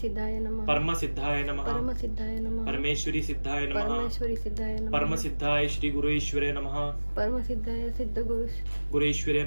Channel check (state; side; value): inverted; both; correlation -1.00